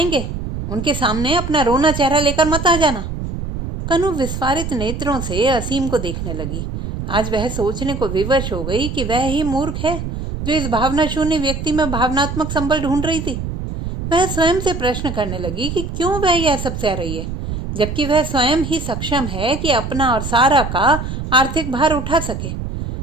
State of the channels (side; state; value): right; noise; rumble, 5 dB below the sound